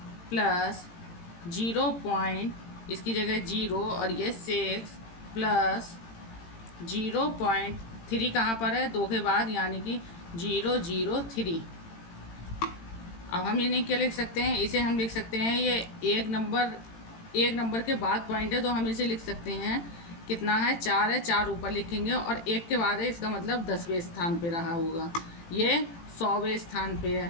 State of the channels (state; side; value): late; right; 18 ms